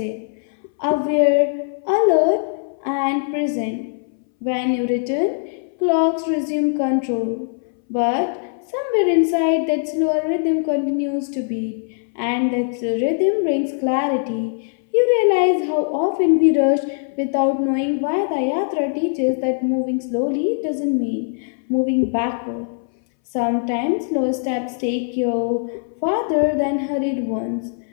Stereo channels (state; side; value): silent; right; 62 dB below the other